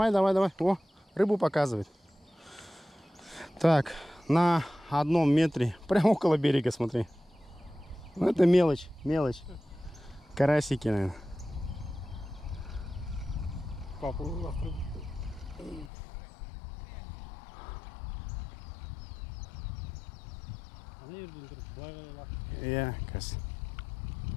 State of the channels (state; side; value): drops out; right; at 15.9 s